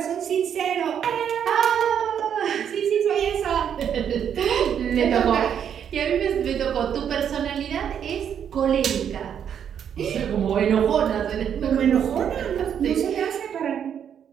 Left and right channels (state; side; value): quieter; left; 8.5 dB